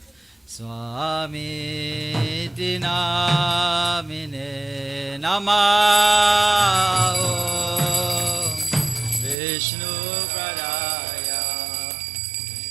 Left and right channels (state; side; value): drops out; left; at 9.3 s